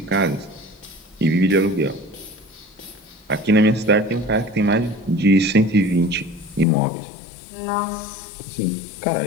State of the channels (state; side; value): drops out; right; at 6.7 s